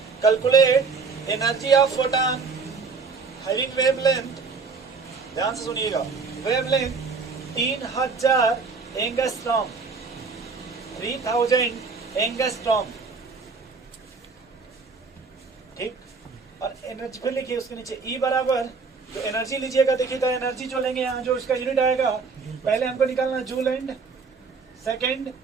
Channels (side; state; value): left; quieter; 4.8 dB